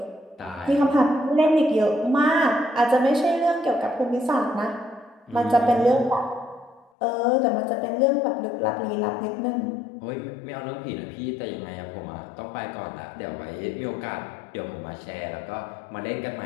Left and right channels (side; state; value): right; drops out; at 6.9 s